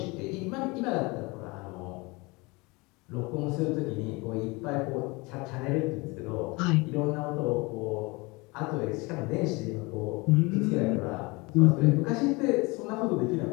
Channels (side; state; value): right; quieter; 25.6 dB